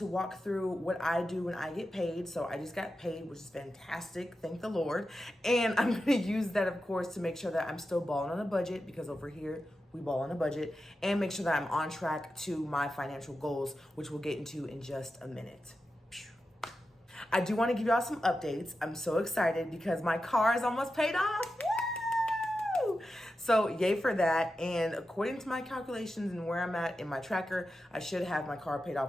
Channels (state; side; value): normal; both; correlation 0.91